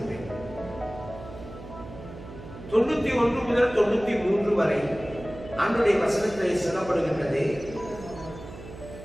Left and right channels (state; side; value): noise; right; hum, 14 dB below the sound